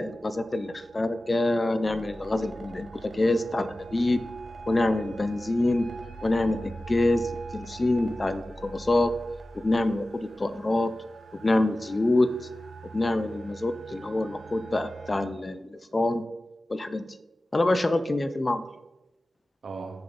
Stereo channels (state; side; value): normal; both; correlation 0.96